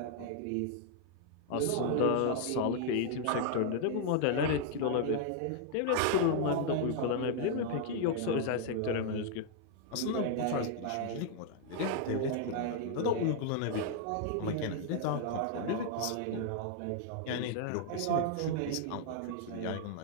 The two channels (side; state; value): both; different; correlation 0.00